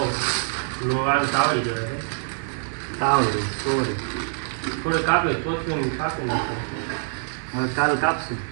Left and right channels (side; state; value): left; silent; 62 dB below the other